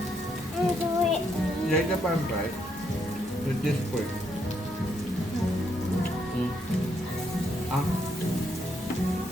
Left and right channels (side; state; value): both; normal; correlation 0.76